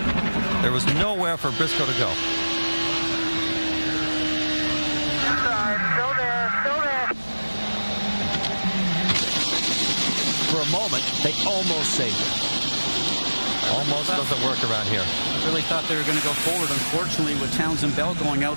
There was nowhere for Briscoe to go. For a moment, they almost saved it. Almost doesn't work around here. I really thought they were going to go forward. Unfortunately, with Townsend Bell going out,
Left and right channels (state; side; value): inverted; both; correlation -1.00